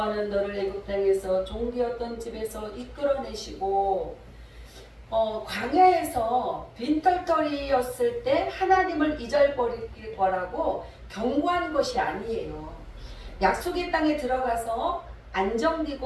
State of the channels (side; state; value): both; identical; correlation 1.00